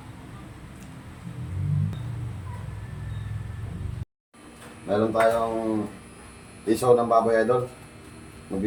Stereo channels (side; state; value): both; identical; correlation 1.00